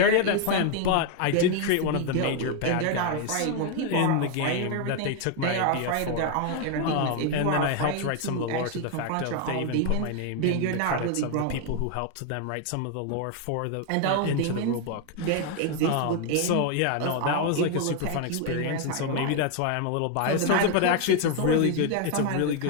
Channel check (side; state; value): both; different; correlation 0.01